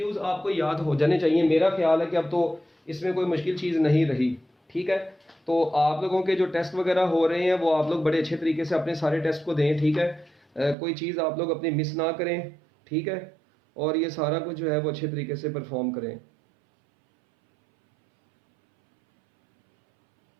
आपको याद हो जाने चाहिए। मेरा ख्याल है कि अब तो इसमें कोई मुश्किल चीज नहीं रही, ठीक ठीक है। तो आप लोगों के जो टेस्ट वगैरह हो रहे हैं वो आप लोग बड़े अच्छे तरीके से अपने सारे टेस्ट को दें, ठीक है। कोई चीज़ आप लोग अपनी मिस ना करें, ठीक है, और ये सारा कुछ जो है वो अच्छे तरीके से परफॉर्म करें।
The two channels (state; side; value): drops out; left; at 10.8 s